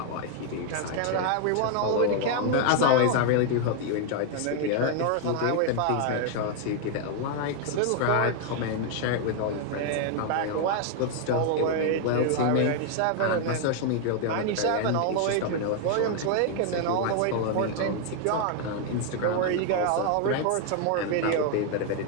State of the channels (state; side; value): different; both; correlation 0.00